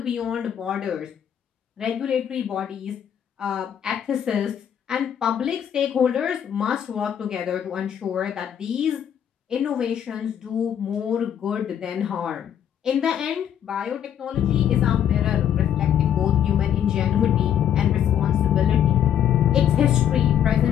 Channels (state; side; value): quieter; right; 9.5 dB